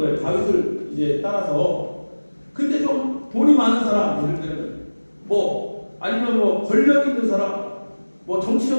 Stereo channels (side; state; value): both; inverted; correlation -1.00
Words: 다윗을 이제 따라서. 근데 좀 돈이 많은 사람, 예를 들면 뭐 아니면 뭐 권력 있는 사람, 뭐